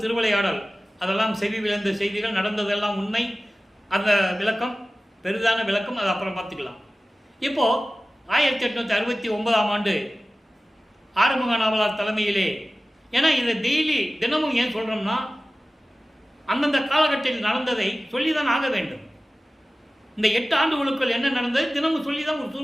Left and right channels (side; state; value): both; normal; correlation 0.96